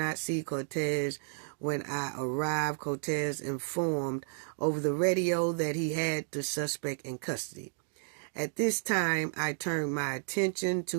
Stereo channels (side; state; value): left; silent; digital silence